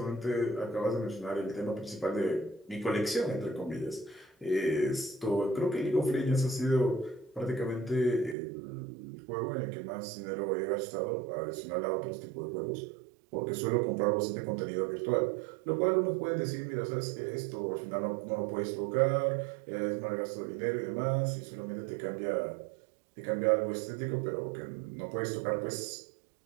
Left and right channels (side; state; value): left; drops out; at 8.3 s